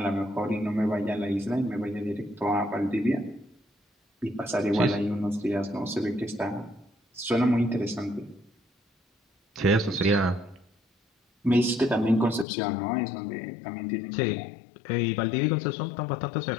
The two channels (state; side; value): drops out; right; at 12.5 s